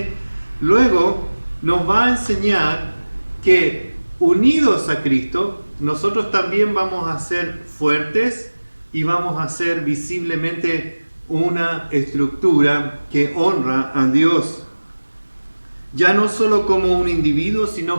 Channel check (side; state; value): both; inverted; correlation -1.00